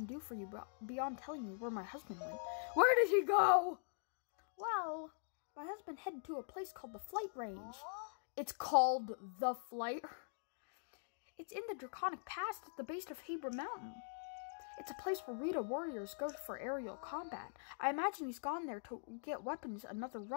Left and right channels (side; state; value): right; silent; digital silence